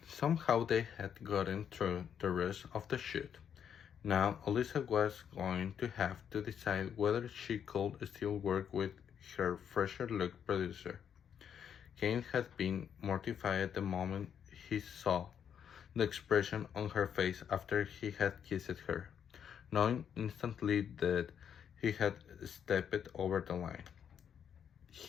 Somehow they had gotten through the rest of the shoot. Now Elisa was going to have to decide whether she could still work with her fresher look producer. Kane had been mortified the moment he saw the expression on her face after he had kissed her, knowing instantly that he had stepped over the line.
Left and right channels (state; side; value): quieter; right; 8.3 dB